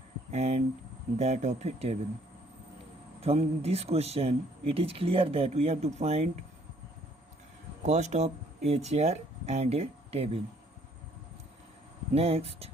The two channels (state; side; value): normal; both; correlation 0.63